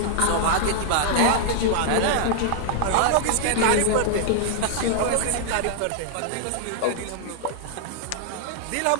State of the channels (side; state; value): both; different; correlation -0.01